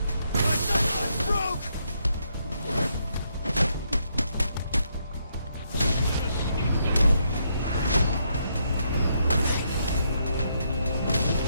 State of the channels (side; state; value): both; inverted; correlation -0.76